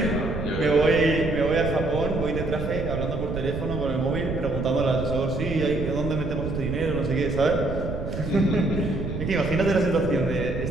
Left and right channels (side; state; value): right; noise; rumble, 5 dB below the sound